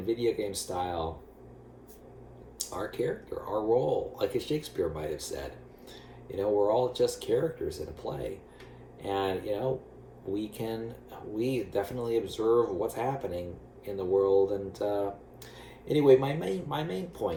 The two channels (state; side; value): identical; both; correlation 1.00